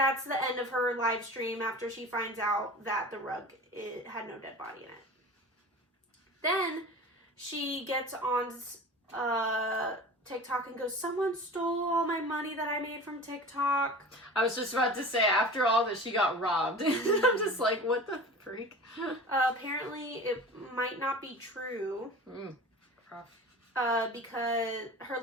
the end of her live stream after she finds out that the rug had no dead body in it. Then she gets on TikTok and goes, someone stole all my money that I made from TikTok. I was just about to say, after all that, she got robbed. I'm just like, what the freak? Apparently, it might not be true. Rough. Because her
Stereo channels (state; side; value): normal; both; correlation 0.37